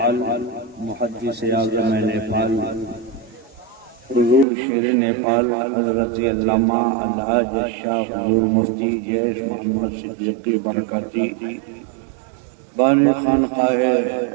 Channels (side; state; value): left; drops out; at 4.5 s